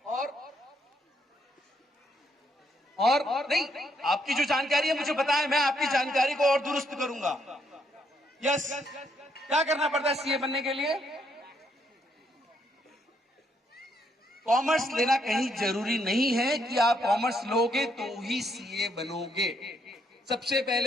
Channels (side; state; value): both; normal; correlation 0.74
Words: और नहीं, आपकी जो जानकारी है मुझे पता है, मैं आपकी जानकारी को और दुरुस्त करूंगा। यस, क्या करना पड़ता है सीए बनने के लिए? कॉमर्स लेना कहीं जरूरी नहीं है कि आप कॉमर्स लोगे तो ही सीए बनोगे। सबसे